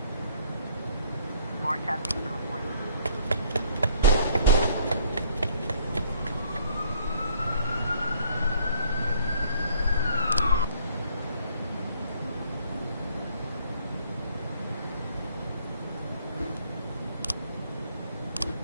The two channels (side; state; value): both; inverted; correlation -0.60